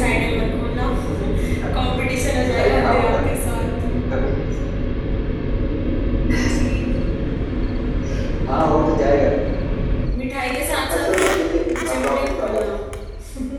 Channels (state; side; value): identical; both; correlation 1.00